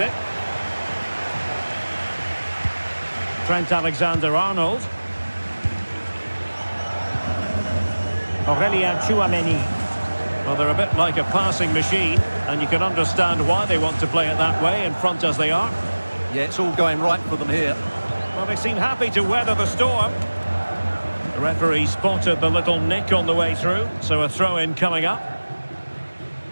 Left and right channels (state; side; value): inverted; both; correlation -1.00